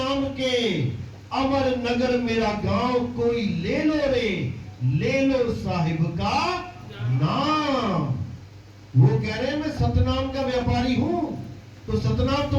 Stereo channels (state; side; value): identical; both; correlation 1.00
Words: के, अमर नगर मेरा गांव, कोई ले लो रे, ले लो साहिब का नाम। वो कह रहे हैं मैं सतनाम का व्यापारी हूं। तो सतनाम